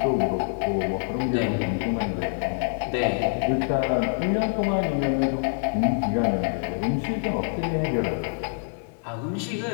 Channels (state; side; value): silent; right; digital silence